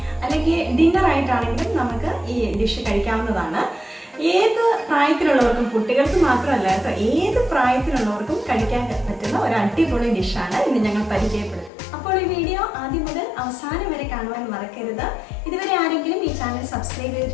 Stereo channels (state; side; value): drops out; right; at 11.7 s